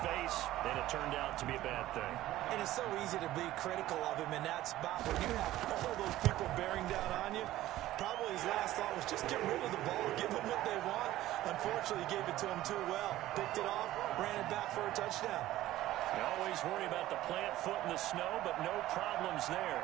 face, and it turned out to be a bad thing. And it's so easy to be critical of him in that spot when you have all those people bearing down on you. Probably his last thought was just get rid of the ball, give them what they want. Unfortunately, he gave it to him too well. Picked it off, ran it back for a touchdown. You always worry about the plant foot in the snow, but no problems there.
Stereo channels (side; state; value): left; quieter; 15.1 dB